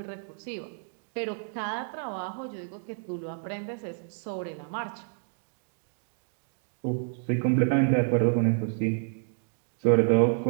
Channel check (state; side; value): silent; left; digital silence